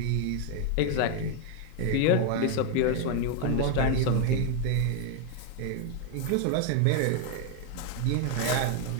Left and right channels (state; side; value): different; both; correlation 0.01